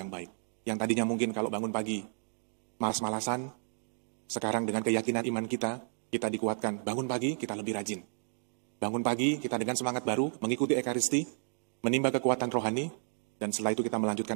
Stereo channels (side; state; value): left; silent; digital silence